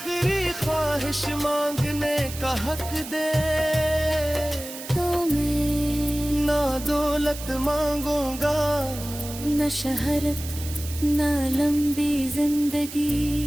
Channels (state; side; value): noise; right; hiss, 12 dB below the sound